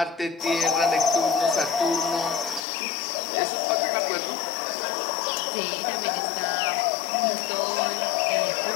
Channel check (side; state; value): right; drops out; at 2.6 s